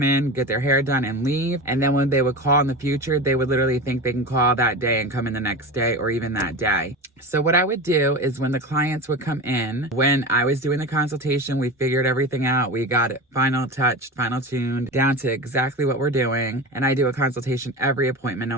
in, get their hair done, and leave. And then when they would call in the future, they would literally think they can call that day and come in the next day or even that day. So what I would do is when the clients would come in, when I was doing the consultation, we figured everything out. We got it final touched, final tuned, down to exactly what we're doing. And I do a consultation every appointment, no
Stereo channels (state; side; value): normal; both; correlation 0.27